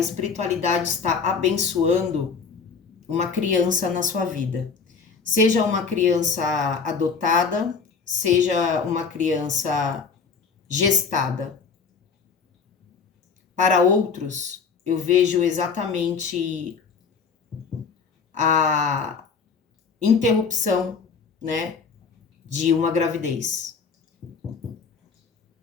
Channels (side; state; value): right; quieter; 5.4 dB